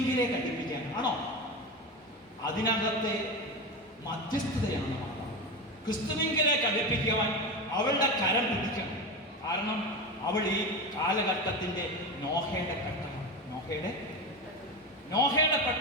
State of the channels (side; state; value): both; normal; correlation 0.21